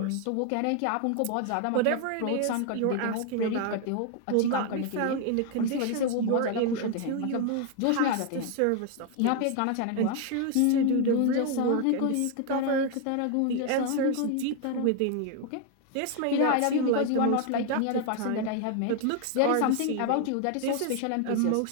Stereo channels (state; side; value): different; both; correlation 0.01